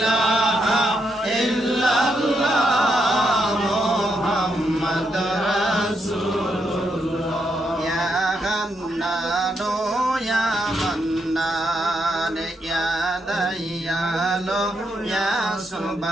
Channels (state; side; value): normal; both; correlation 0.80